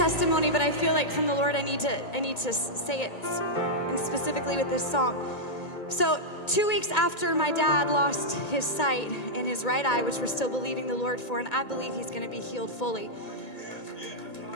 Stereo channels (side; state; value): right; late; 1.9 ms